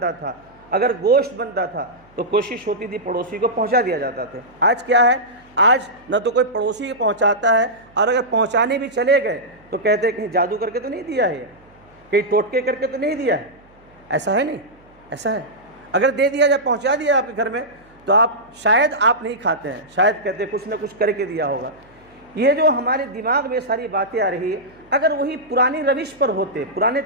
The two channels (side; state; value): right; noise; hum, 30 dB below the sound